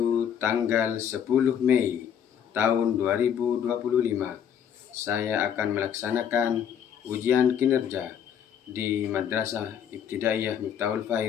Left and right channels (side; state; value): right; quieter; 8.6 dB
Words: tanggal 10 Mei tahun 2025, saya akan melaksanakan ujian kinerja di Madrasah Ibtidaiyah Miftahul